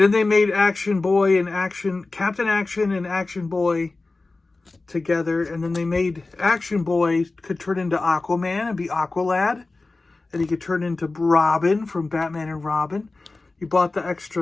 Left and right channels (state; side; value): quieter; right; 3.4 dB